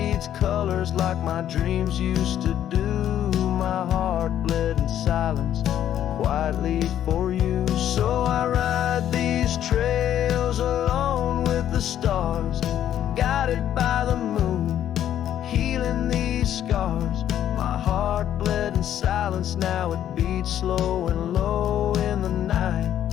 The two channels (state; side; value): quieter; right; 10.9 dB